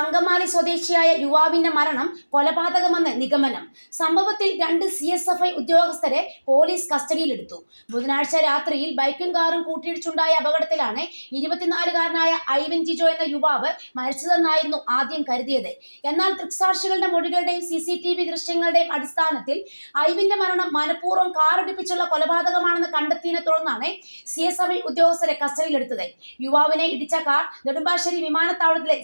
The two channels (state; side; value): inverted; both; correlation -1.00